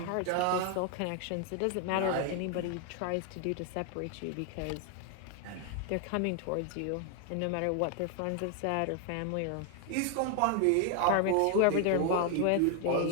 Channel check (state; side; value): different; both; correlation 0.00